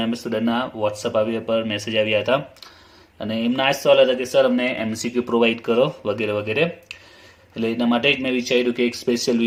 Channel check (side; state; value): both; identical; correlation 1.00